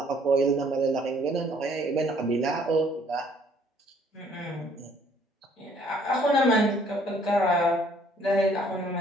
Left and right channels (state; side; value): normal; both; correlation 0.61